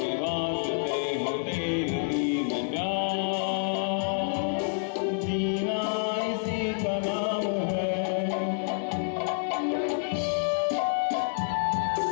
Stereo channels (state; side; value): silent; right; 59 dB below the other